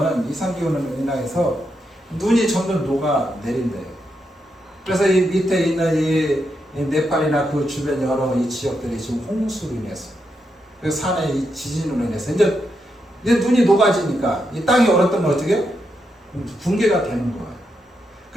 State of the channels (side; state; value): both; normal; correlation 0.83